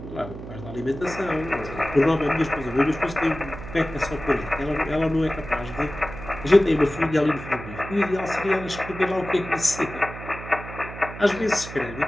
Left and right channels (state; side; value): noise; right; hum, 12 dB below the sound